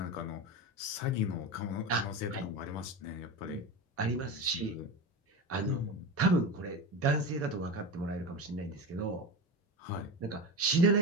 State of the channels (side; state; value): both; normal; correlation 0.22